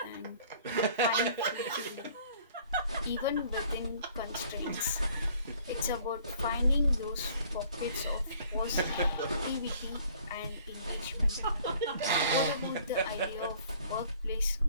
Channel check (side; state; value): both; inverted; correlation -0.56